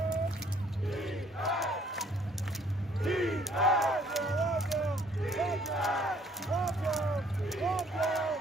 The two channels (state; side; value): normal; both; correlation 0.61